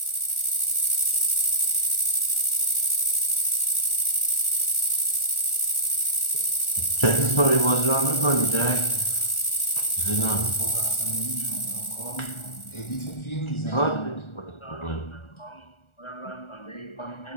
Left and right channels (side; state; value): right; late; 1.4 ms